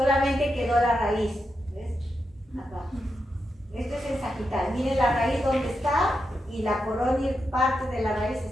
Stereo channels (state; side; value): normal; both; correlation 0.86